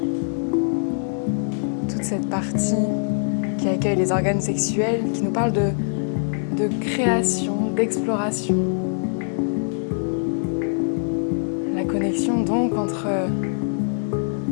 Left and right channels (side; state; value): right; silent; digital silence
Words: toute cette partie qui accueille les organes sexuels, qui nous parle de création, d'exploration. La connexion donc entre